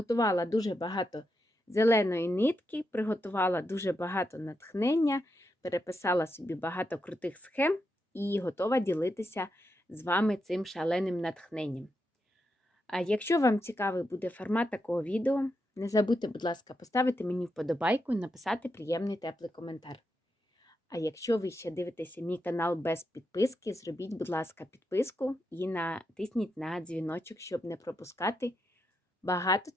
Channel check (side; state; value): both; normal; correlation 0.84